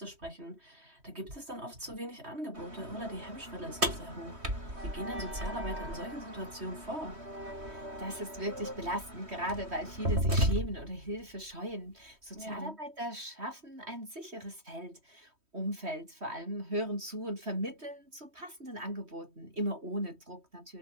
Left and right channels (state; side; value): late; left; 3.1 ms